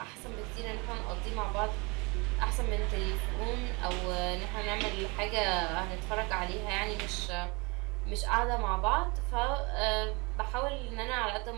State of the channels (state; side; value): quieter; left; 27.9 dB